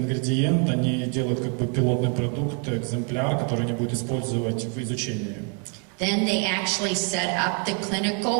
они делают как бы пилотный продукт, экземпляр, который они будут использовать в изучении. Then they actually set up the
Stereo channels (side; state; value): left; quieter; 39.4 dB